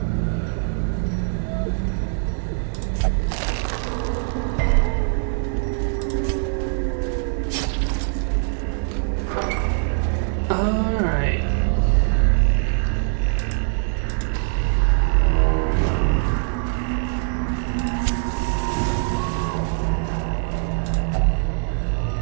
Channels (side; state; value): left; silent; 64 dB below the other